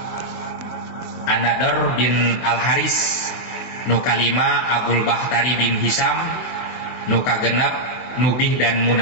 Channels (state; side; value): late; right; 24 ms